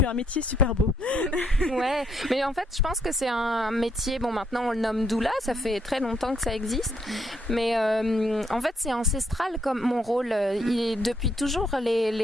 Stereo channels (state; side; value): normal; both; correlation 0.73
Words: as un métier super beau. Ouais, mais en fait, je pense que c'est un métier. Bon, maintenant on le nomme doula, ça fait très longtemps que ça existe. Mais en fait, c'est ancestral comme mon rôle. Depuis toujours,